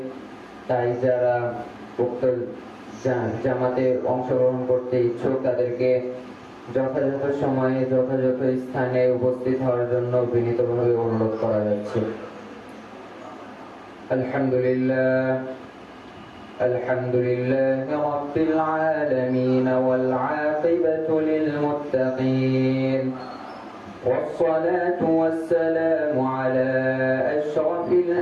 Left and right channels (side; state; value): both; identical; correlation 1.00